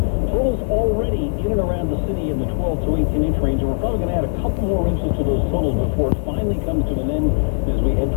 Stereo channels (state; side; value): silent; right; digital silence